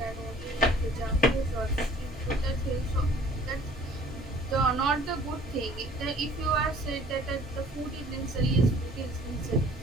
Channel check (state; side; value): normal; both; correlation 0.53